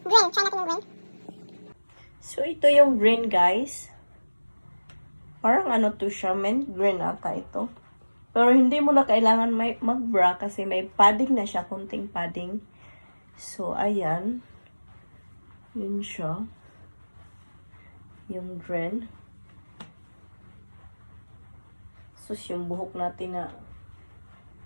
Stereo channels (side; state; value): both; inverted; correlation -1.00